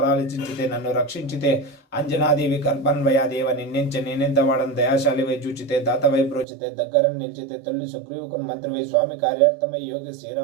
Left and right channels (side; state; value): left; drops out; at 6.5 s